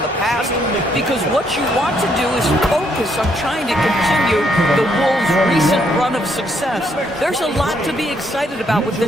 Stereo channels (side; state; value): both; normal; correlation 0.72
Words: past, because what you want to do is focus on trying to continue the Wolves' recent run of success. There's a lot to be excited about with